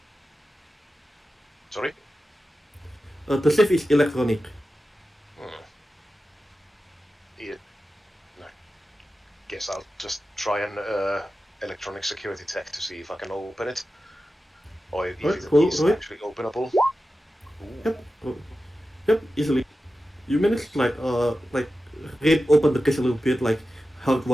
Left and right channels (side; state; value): both; normal; correlation 0.93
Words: Sorry? The safe is electronic. Yeah. No. Guess I'll just try an electronic security tech to see if I can open it. Or if Right, it cool, is right. actually openable. Yep. Yep, easily. You managed to like rip open the case a little bit, like